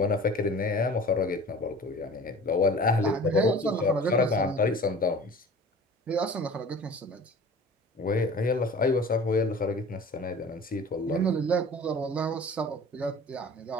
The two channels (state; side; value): normal; both; correlation 0.43